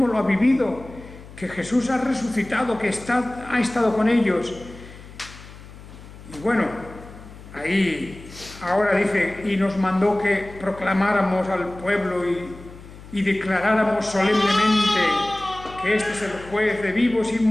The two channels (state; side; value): noise; left; hum, 18 dB below the sound